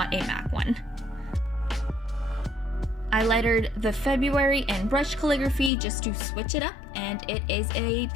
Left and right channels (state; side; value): drops out; right; at 5.7 s